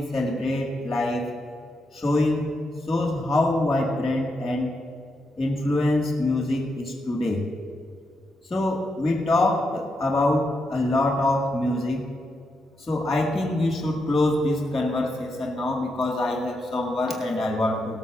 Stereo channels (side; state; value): both; normal; correlation 0.83